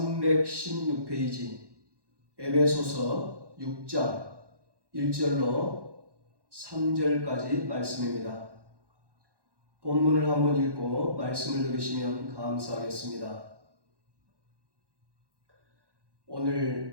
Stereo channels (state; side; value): late; left; 1.1 ms